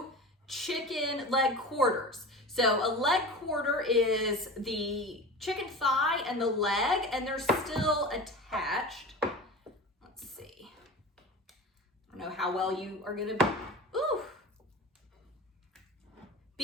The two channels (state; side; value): normal; both; correlation 0.32